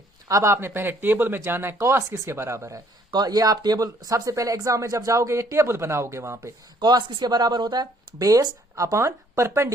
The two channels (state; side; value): normal; both; correlation 0.62